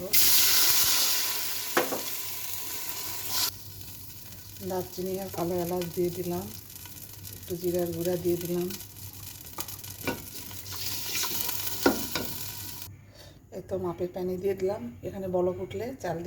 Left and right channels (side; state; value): both; identical; correlation 1.00